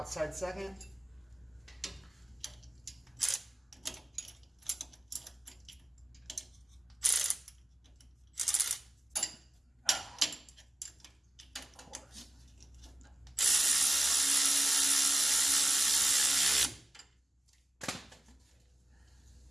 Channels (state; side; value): normal; both; correlation 0.95